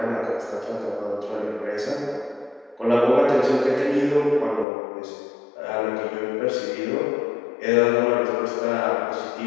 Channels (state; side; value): drops out; right; at 4.7 s